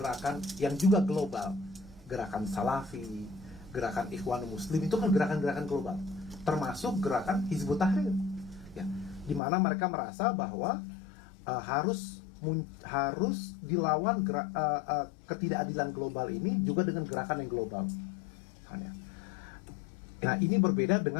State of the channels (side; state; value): right; drops out; at 9.4 s